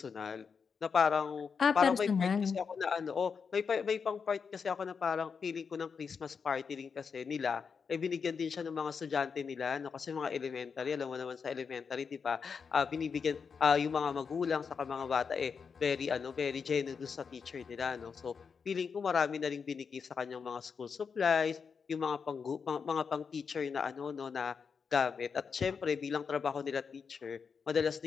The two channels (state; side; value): quieter; right; 5.9 dB